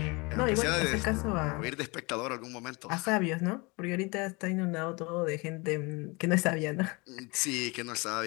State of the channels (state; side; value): quieter; right; 27.1 dB